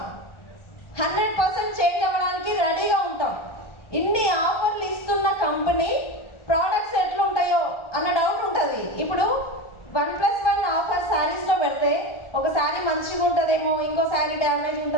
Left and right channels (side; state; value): right; late; 1.4 ms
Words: 100% చేంజ్ అవ్వడానికి రెడీగా ఉంటాం. ఇన్ని ఆఫర్లు ఇస్తున్న కంపెనీ ప్రోడక్ట్స్ ఎట్లుంటాయో అన్న డౌట్ ఉంటుంది. ఇప్పుడు 1+1 ఆఫర్ శారీస్లో పెడితే ఒక శారీ మంచిగా ఉంటుందేమో, ఇంకో శారీ డ్యామేజ్